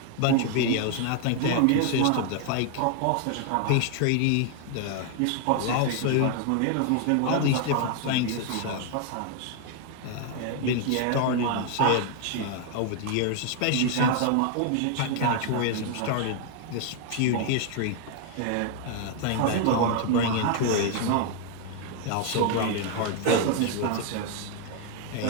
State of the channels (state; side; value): different; both; correlation 0.00